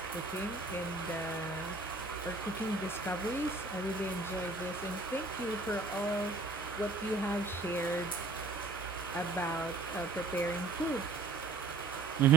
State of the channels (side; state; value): left; quieter; 3.4 dB